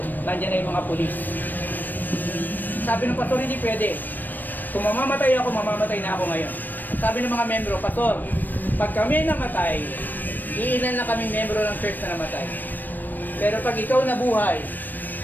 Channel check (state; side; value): late; right; 0.090 ms